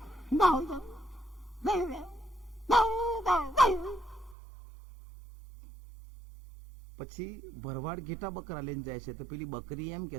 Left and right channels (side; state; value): left; drops out; at 4.4 s